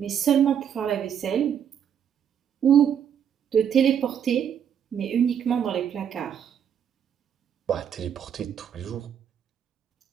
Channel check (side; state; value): left; quieter; 8.6 dB